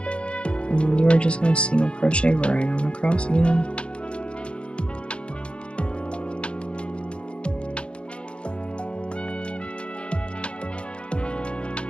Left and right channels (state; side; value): late; right; 0.058 ms